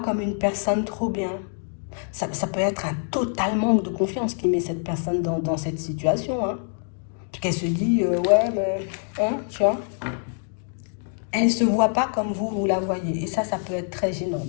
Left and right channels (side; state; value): right; silent; 61 dB below the other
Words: une personne trop bien. Ça peut être un total manque de confiance qui met cette personne dans cette situation, hein. Puis qu'elle se dit, ouais, mais, hein, tu vois. Elle ne se voit pas comme vous la voyez. Et ça peut être très gênant.